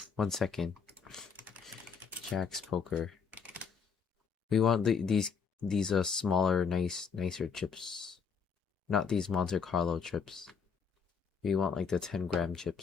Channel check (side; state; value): right; quieter; 6.1 dB